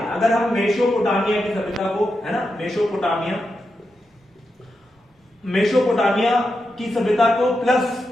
अगर हम मेसोपोटामिया की सभ्यता को है ना, मेसोपोटामिया की सभ्यता को प्लस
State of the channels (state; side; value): normal; both; correlation 0.87